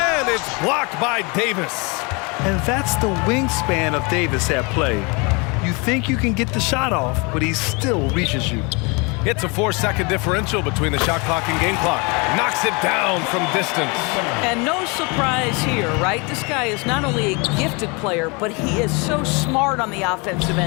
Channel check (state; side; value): quieter; right; 29.7 dB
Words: it's blocked by Davis. And that's the wingspan of Davis at play. You think you can get the shot off, but he still reaches you. It's a 4-second differential between the shot clock and game clock. Knocks it down from distance. And no surprise here, right? This guy is not only a gifted player, but he is so smart on the offensive